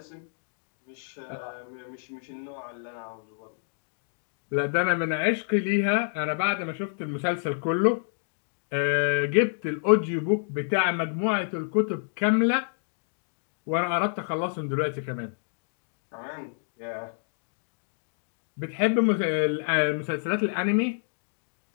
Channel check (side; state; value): right; silent; digital silence